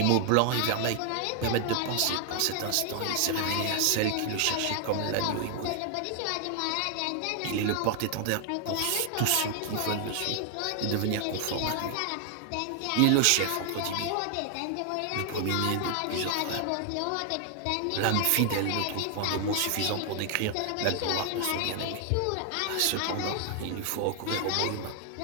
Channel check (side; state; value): both; different; correlation 0.00